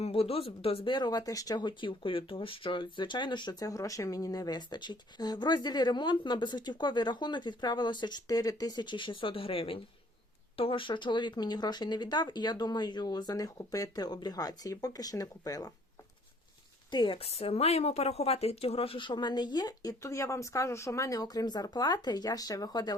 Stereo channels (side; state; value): both; normal; correlation 0.59